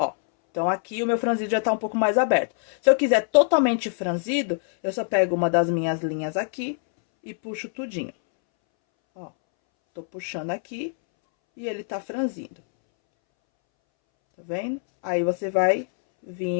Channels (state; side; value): silent; right; 62 dB below the other